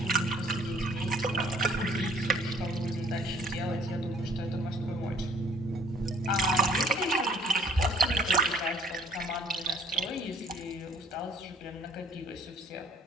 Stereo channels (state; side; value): normal; both; correlation 0.57